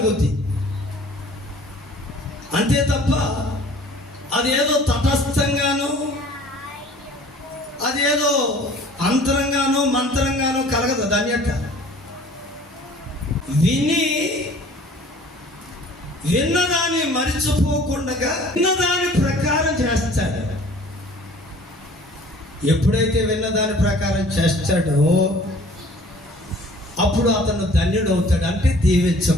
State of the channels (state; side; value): normal; both; correlation 0.50